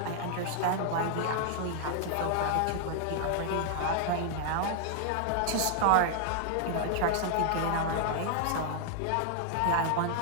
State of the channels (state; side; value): different; both; correlation 0.00